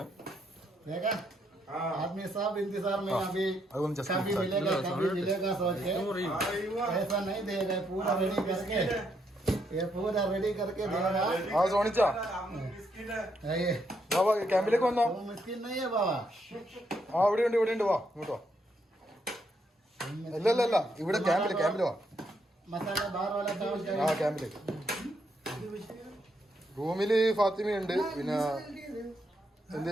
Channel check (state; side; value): normal; both; correlation 0.76